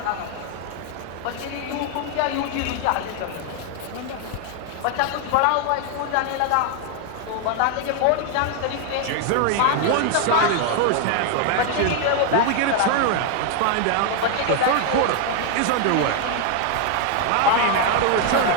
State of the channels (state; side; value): different; both; correlation 0.00